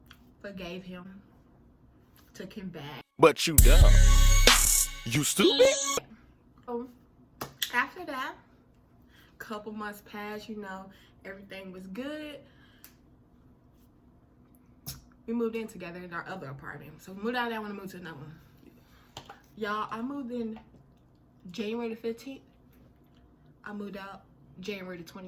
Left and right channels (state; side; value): identical; both; correlation 1.00